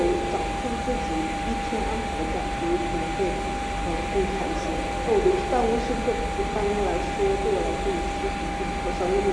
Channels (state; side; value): identical; both; correlation 1.00